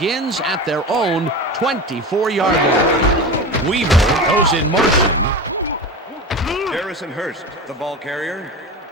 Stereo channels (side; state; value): both; normal; correlation 0.28